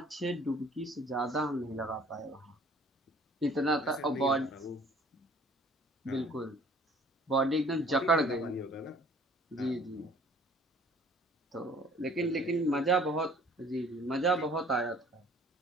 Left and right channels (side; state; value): both; normal; correlation 0.54